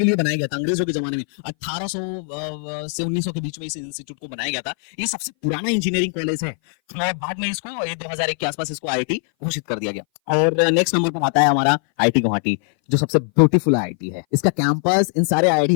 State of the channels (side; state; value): right; silent; 60 dB below the other